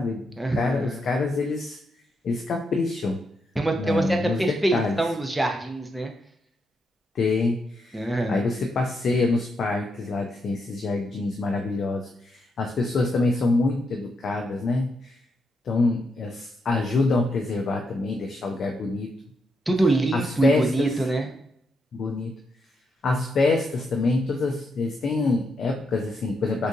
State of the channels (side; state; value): both; normal; correlation 0.81